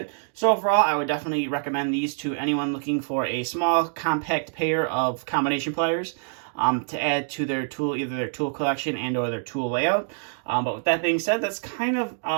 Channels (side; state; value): left; silent; digital silence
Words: So overall, I would definitely recommend these to anyone looking for a small, compact pair of combination pliers to add to their tool, either their tool collection and or their tool layout. But with that being said, that's kind of